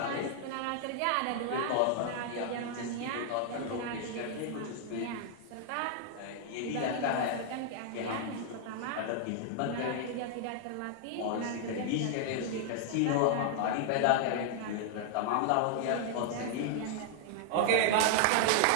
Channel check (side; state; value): both; different; correlation 0.00